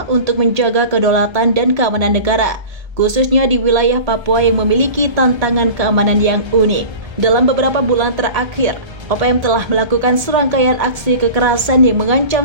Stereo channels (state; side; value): late; left; 1.3 ms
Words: untuk menjaga kedaulatan dan keamanan negara, khususnya di wilayah Papua yang memiliki tantangan keamanan yang unik. Dalam beberapa bulan terakhir, OPM telah melakukan serangkaian aksi kekerasan yang